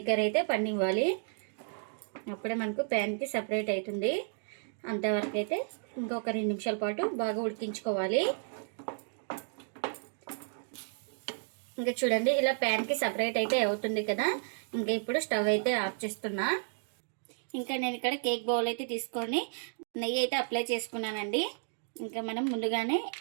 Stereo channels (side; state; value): left; silent; digital silence